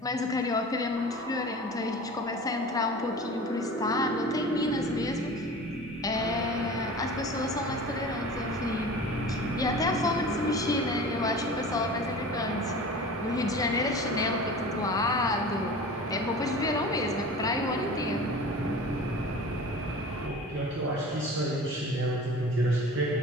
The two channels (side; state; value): both; normal; correlation 0.37